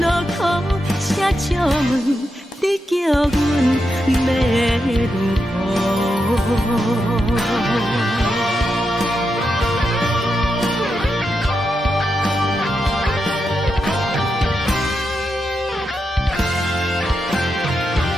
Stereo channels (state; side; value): normal; both; correlation 0.86